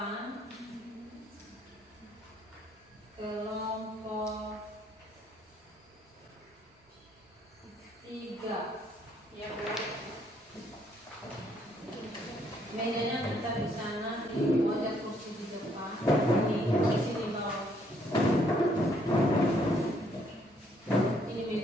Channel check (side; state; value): both; normal; correlation 0.68